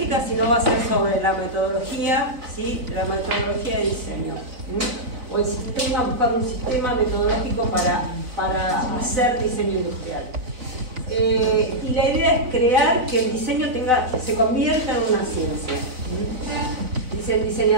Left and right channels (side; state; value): left; late; 4.0 ms